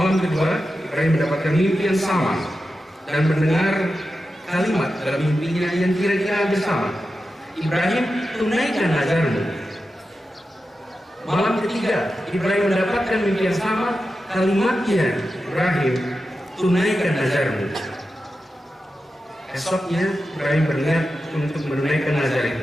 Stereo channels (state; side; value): normal; both; correlation 0.91